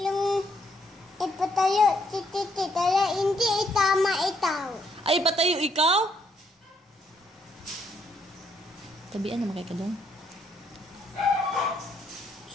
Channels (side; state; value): both; normal; correlation 0.72